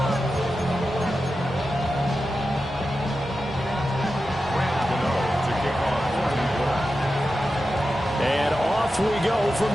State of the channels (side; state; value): both; normal; correlation 0.91